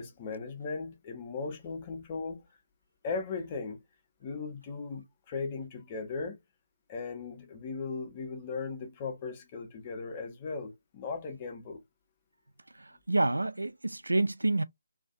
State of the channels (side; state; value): both; inverted; correlation -0.82